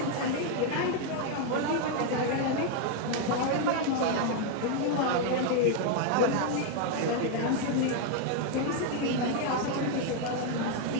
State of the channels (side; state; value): both; different; correlation 0.01